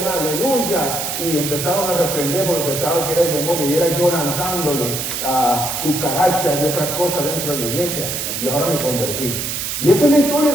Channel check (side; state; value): right; noise; hiss, 3 dB below the sound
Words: aleluya. Y empezaban a reprender porque pensaban que era el demonio. Y era yo lanzándole a cucarachas y otras cosas dentro de la iglesia. Y ahora me convertí. Y esa es la historia